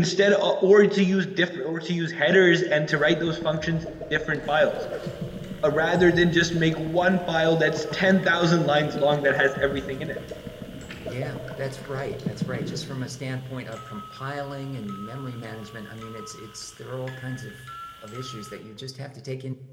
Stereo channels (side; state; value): both; identical; correlation 1.00